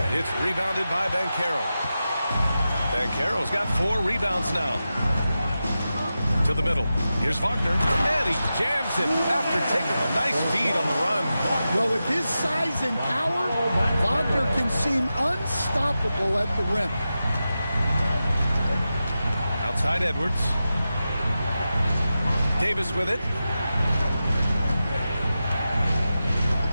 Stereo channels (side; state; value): both; inverted; correlation -0.92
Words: It's rebounded by Banchero. Banchero's got 4 rebounds now. To the middle. Here's Wagner. And he jams it after taking a nice feed on the run. Well, with his size and power, Wagner can seem unstoppable at the rim. Outside Edwards. Davis with it.